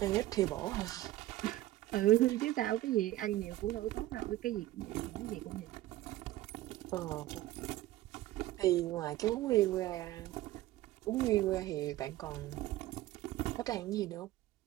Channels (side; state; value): left; quieter; 15.7 dB